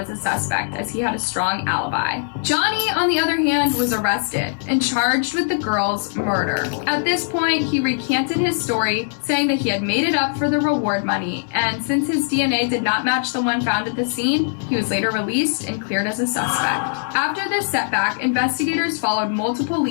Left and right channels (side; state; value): right; silent; 65 dB below the other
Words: a suspect as he had a strong alibi. Johnny, on the other hand, was arrested and charged with the girl's murder. At this point, he recanted his story, saying that he had made it up for the reward money, and since his DNA did not match the one found at the scene, he was later released and cleared as a suspect. After this setback, investigators followed multiple